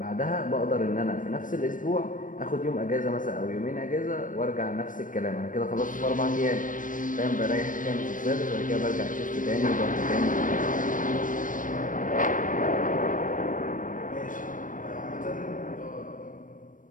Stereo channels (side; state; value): right; late; 0.38 ms